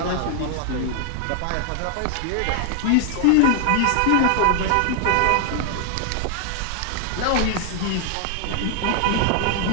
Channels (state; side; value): different; both; correlation 0.00